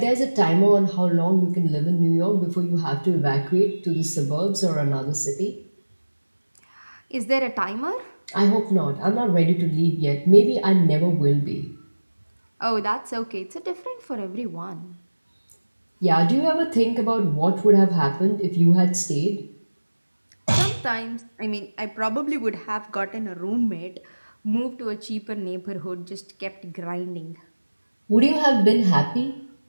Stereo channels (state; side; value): inverted; both; correlation -1.00